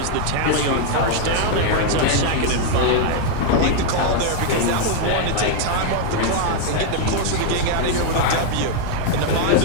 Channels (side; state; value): both; different; correlation 0.00